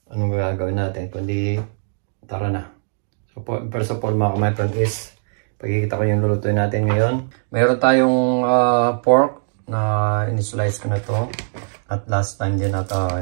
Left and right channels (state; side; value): silent; left; digital silence